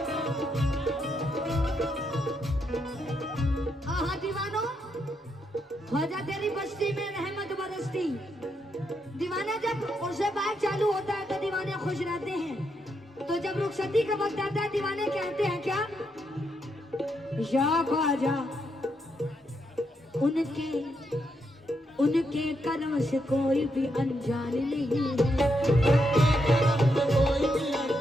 ख्वाजा तेरी बस्ती में रहमत बरसती दीवाना जब उनसे बात चालू होता है तो दीवाने खुश रहते हैं तो जब रुखसती का वक्त आता है दीवाने कहते हैं क्या या ख्वाजा उनके कर्म से कोई भी अनजान नहीं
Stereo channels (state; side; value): normal; both; correlation 0.80